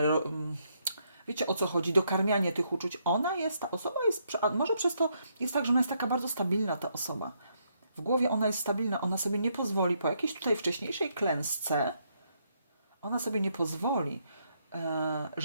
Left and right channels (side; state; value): both; inverted; correlation -0.76